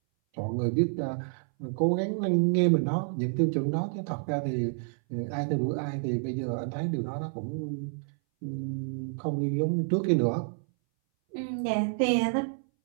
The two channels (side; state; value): left; silent; 59 dB below the other